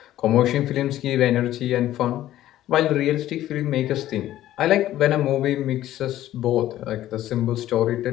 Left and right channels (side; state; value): right; quieter; 13.6 dB